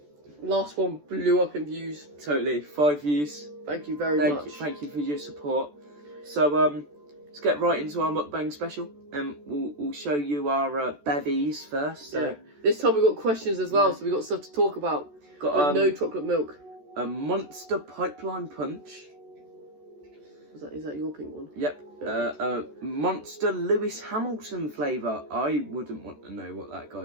Last one blew up in views. Totally. 5 views. Thank you very much. Thank you for your support. So let's get right into our mukbang special, and we'll show you our bevies first. So. Yeah. This time we got questions as well, so we got stuff to talk about. Got no chocolate milk. A Monster Pipeline Punch. Is that your pink one? Yep. A Monster Lewis Hamilton flavour. I wouldn't want to know what that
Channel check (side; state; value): left; late; 14 ms